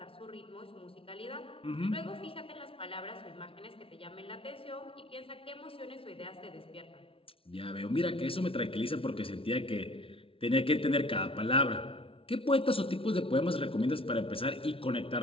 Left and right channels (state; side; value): late; right; 0.26 ms